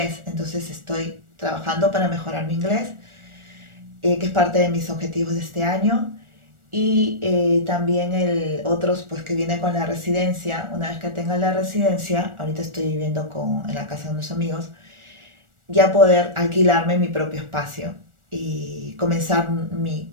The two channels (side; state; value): left; late; 1.4 ms